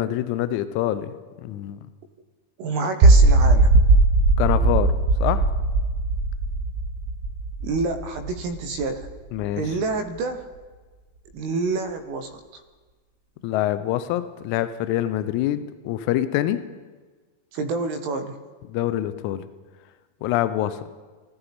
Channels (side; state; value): left; late; 21 ms